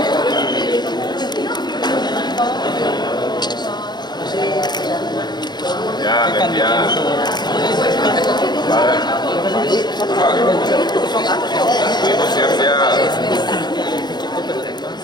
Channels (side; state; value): right; late; 0.21 ms